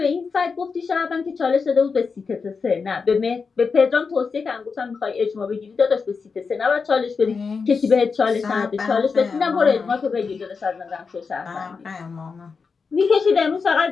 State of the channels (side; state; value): right; quieter; 5.1 dB